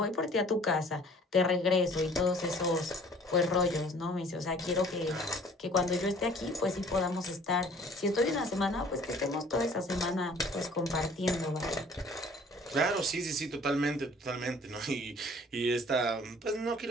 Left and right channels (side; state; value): both; normal; correlation 0.52